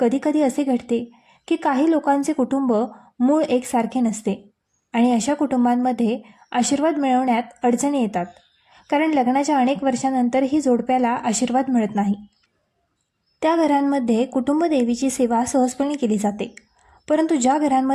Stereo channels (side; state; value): both; identical; correlation 1.00